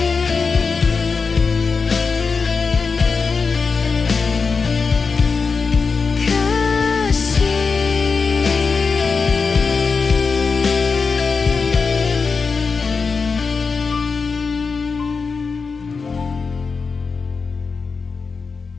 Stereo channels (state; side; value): quieter; right; 4.9 dB